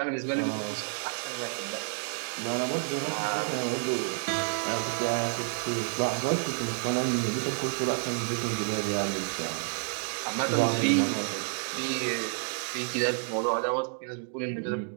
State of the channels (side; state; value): left; silent; 58 dB below the other